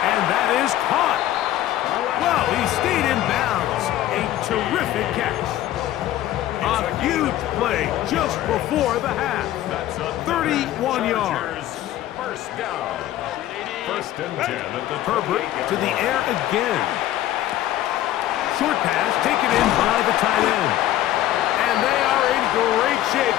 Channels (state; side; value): quieter; right; 13.6 dB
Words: And that is caught. Well, he stayed in bounds. A terrific catch. A huge play just before the half. 31 yards. First down. First and 10 at the Herbert to the air again. Short pass taken in by the tight end. And they are in great shape.